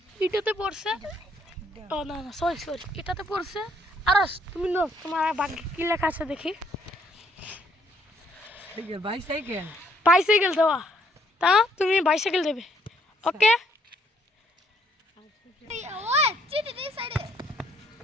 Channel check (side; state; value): both; normal; correlation 0.68